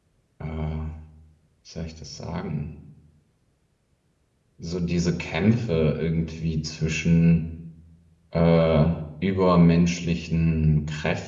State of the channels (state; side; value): identical; both; correlation 1.00